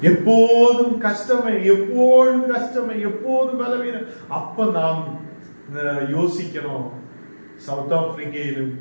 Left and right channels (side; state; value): both; inverted; correlation -1.00